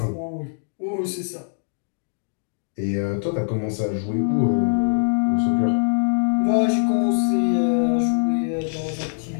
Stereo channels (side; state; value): right; silent; digital silence